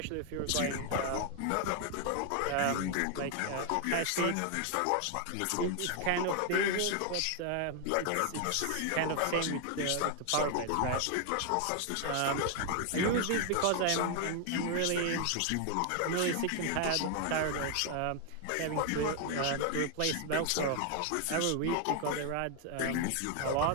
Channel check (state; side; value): different; both; correlation 0.00